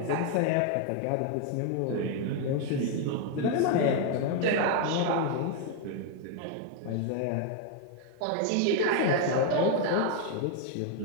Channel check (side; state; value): both; different; correlation 0.01